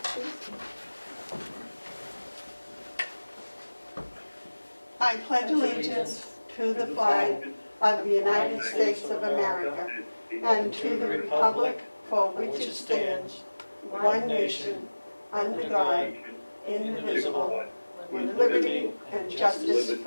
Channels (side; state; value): both; inverted; correlation -1.00